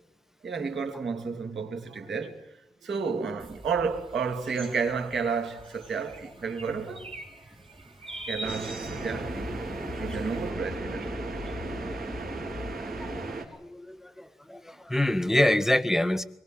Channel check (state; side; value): normal; both; correlation 0.82